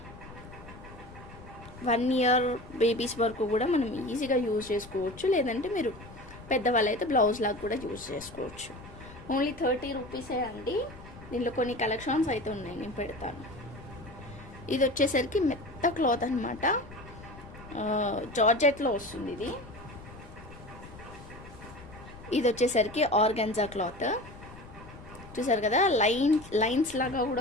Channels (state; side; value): noise; left; rumble, 17 dB below the sound